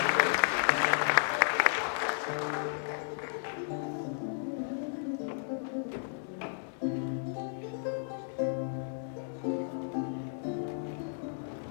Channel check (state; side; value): silent; right; digital silence